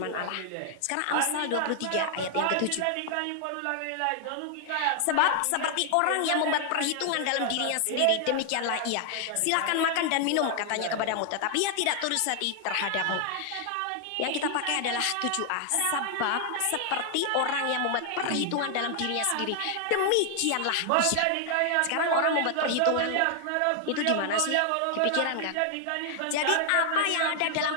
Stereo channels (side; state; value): both; different; correlation 0.00